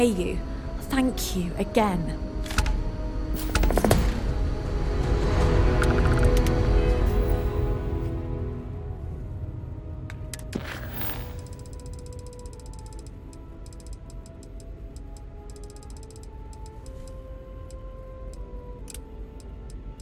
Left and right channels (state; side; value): identical; both; correlation 1.00